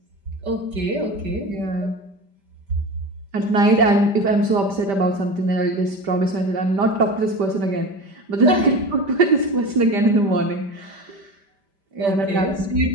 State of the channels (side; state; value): left; late; 5.1 ms